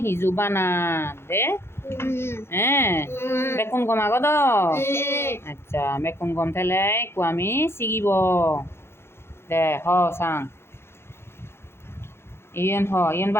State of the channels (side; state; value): right; late; 0.12 ms